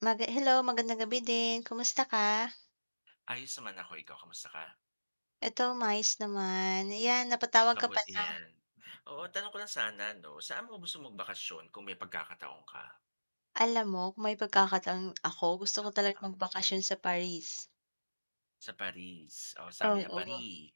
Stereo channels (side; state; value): both; inverted; correlation -1.00